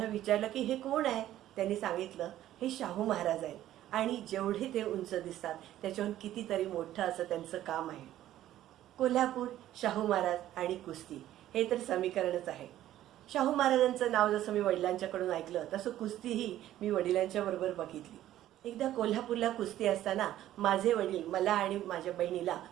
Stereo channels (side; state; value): left; quieter; 13.1 dB